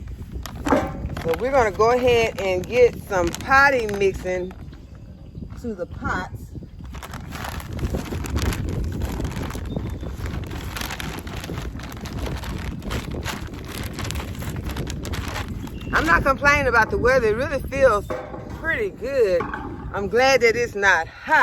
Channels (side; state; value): both; identical; correlation 1.00